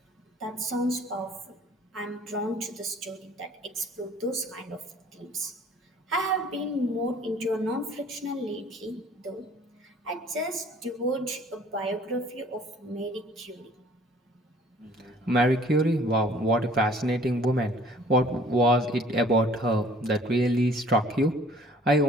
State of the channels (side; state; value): both; normal; correlation 0.54